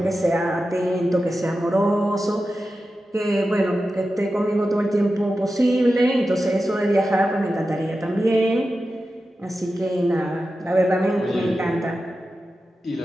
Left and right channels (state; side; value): normal; both; correlation 0.92